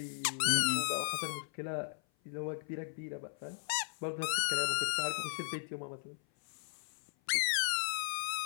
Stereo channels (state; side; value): silent; right; 53 dB below the other